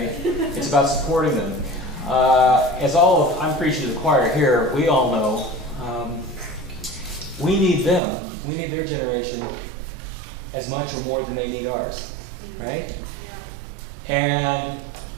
It's about supporting them. I'm preaching to the choir here, we all know we need them. We need their generation as much or more than they need ours, right? And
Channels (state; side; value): drops out; left; at 8.0 s